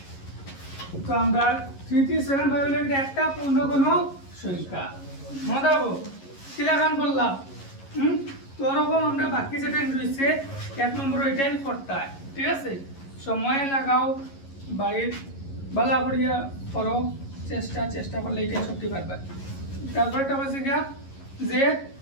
তো আমরা 3375 হলো এটা একটা পূর্ণ কোনো সংখ্যা মনে রাখবো কি লাগান বললাম তো ওরকম আমরা বাকি যেটা রয়েছে 1 নম্বর ওইটাই করতে হয় ঠিক আছে সময় লাগাও বাড়ির বালা করিয়া করো চেষ্টা করলে এটাই সত্যি পারবে তারপরে একটা বলছে গিয়া যে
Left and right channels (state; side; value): late; right; 11 ms